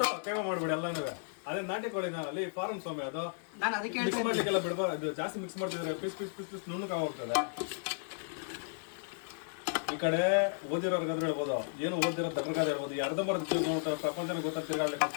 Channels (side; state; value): right; silent; digital silence